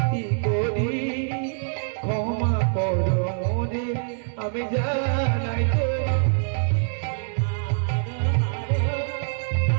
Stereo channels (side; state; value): left; silent; 62 dB below the other